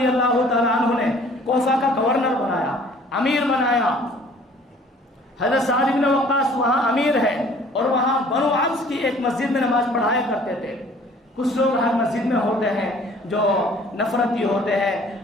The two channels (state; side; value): normal; both; correlation 0.54